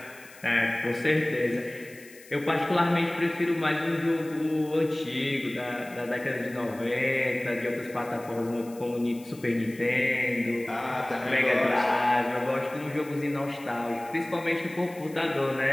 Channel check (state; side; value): noise; left; hiss, 22 dB below the sound